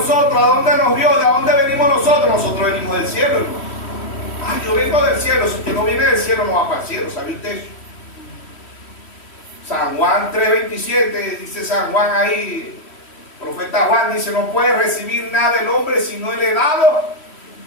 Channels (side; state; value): right; late; 3.1 ms